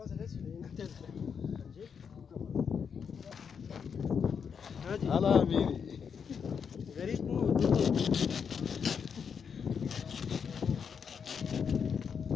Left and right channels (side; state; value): right; quieter; 6.7 dB